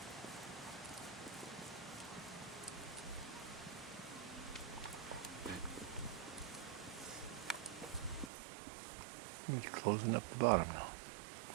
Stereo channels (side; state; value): left; drops out; at 8.3 s